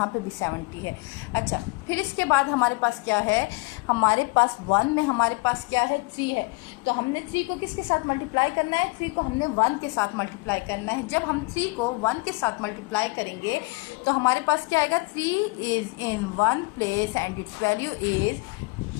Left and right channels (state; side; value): quieter; right; 27.3 dB